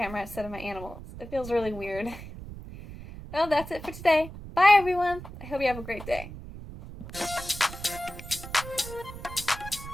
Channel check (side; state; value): right; noise; rumble, 12 dB below the sound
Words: instead of my animals. It feels really weird. Well, that's it for today. Bye everyone. I hope you have a great day.